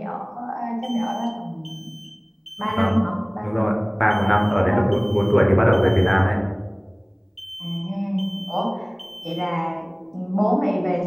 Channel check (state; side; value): identical; both; correlation 1.00